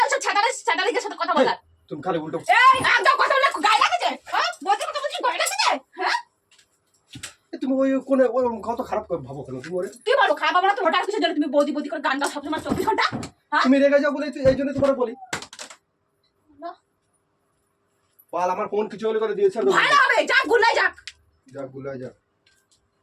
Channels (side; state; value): both; identical; correlation 1.00